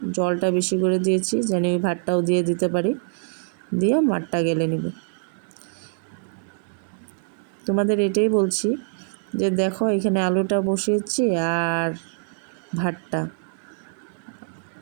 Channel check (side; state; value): left; silent; 62 dB below the other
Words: জলটা বেশি করে দিয়েছি যেন ওই ভাতটাও দিয়ে দিতে পারি, দিয়ে মাঠটা গেলে নিব। তোমাদের এটাই বলছি যে দেখো এখানে আলুটা বসিয়েছি আর ভাতটা,